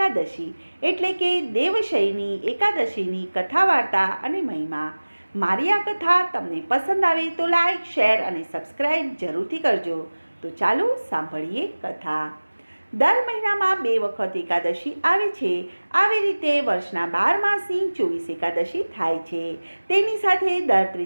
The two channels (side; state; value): both; inverted; correlation -1.00